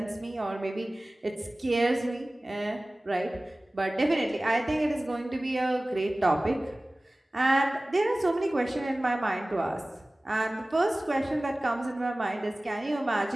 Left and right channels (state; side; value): normal; both; correlation 0.98